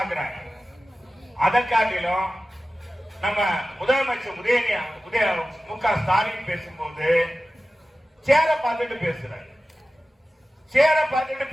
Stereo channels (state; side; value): normal; both; correlation 0.95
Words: அதை காட்டிலும் நம்ம முதலமைச்சர் மு.க. ஸ்டாலின் பேசும்போது சேர பார்த்துட்டு பேசுறாரு. சேர பார்த்துட்டு